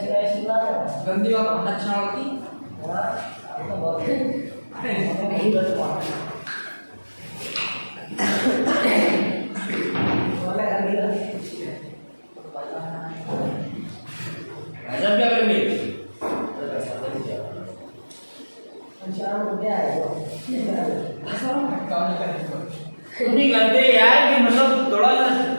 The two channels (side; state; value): both; inverted; correlation -1.00